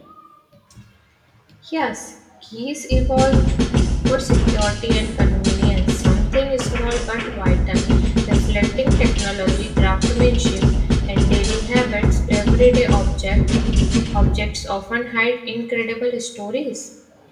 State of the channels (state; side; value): identical; both; correlation 1.00